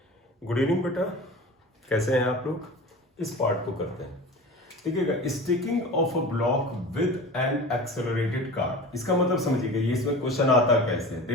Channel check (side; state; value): both; normal; correlation 0.35